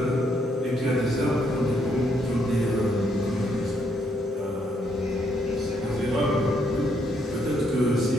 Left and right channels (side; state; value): both; normal; correlation 0.73